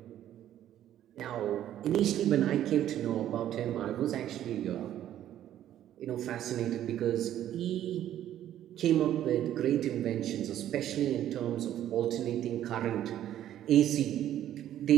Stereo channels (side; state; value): left; quieter; 11.7 dB